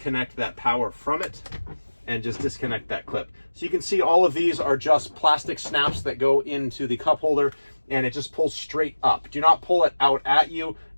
that power from it and just disconnect that clip. So you can see all of these are just plastic snaps that go into the cup holder, and it just pulls straight up. Do not pull it out at you.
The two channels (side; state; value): both; inverted; correlation -1.00